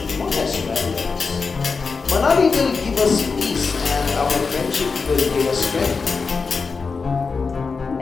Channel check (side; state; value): right; quieter; 4.8 dB